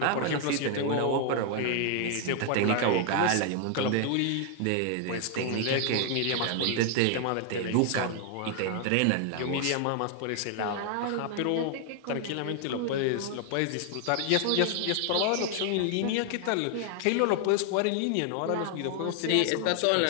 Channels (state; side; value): different; both; correlation 0.00